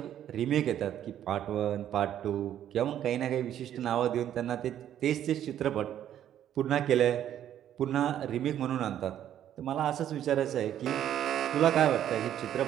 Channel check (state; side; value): quieter; left; 10.8 dB